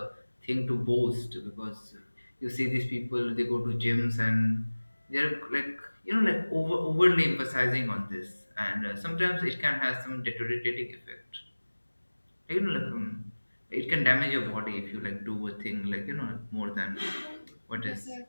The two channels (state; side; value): inverted; both; correlation -1.00